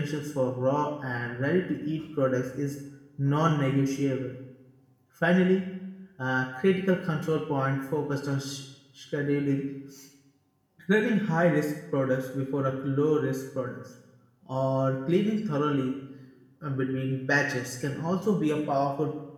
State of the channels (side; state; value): both; identical; correlation 1.00